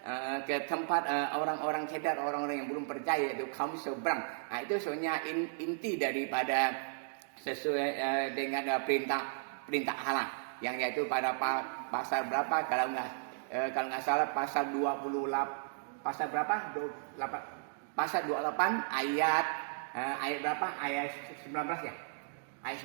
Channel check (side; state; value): left; silent; digital silence